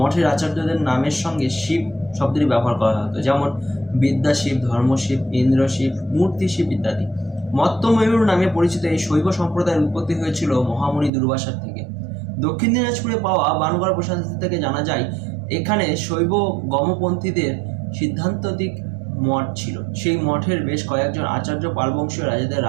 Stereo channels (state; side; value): drops out; left; at 11.1 s